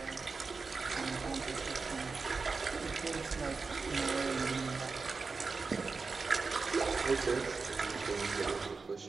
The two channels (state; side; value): quieter; left; 4.4 dB